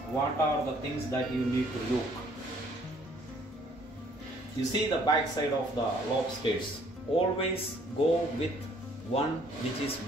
what are the things that you need to look. You see the back side of the lobsters. Always go with one which is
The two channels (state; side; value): normal; both; correlation 0.61